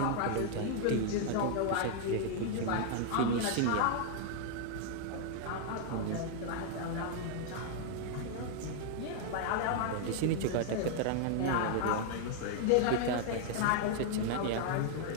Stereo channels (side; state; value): both; different; correlation 0.00